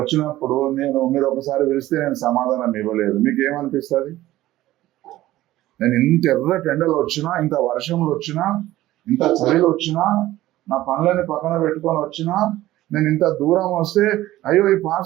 మీరు ఒకసారి పిలిస్తే నేను సమాధానం ఇవ్వలేదు, మీకు ఏమనిపిస్తుంది? నేను ఇంత ఎర్రటి ఎండలు వచ్చినా, ఇంత వర్షంలో వచ్చినా, ఇంత చలిలో వచ్చినా, నా పనులని పక్కన పెట్టుకొని వచ్చినా, నేను ఇంత దూరం వస్తే అయ్యో ఈ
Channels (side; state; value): left; quieter; 15.6 dB